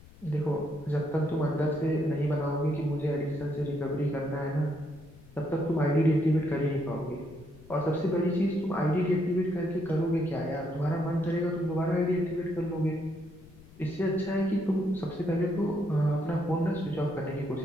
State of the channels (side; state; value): left; noise; rumble, 22 dB below the sound